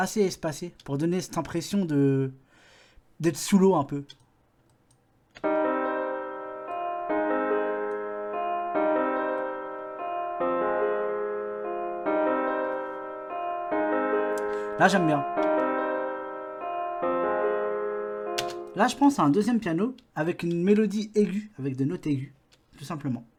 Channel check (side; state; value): both; identical; correlation 1.00